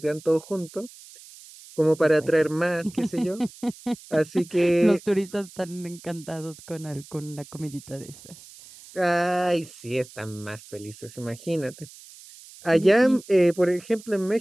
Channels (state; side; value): noise; right; hiss, 20 dB below the sound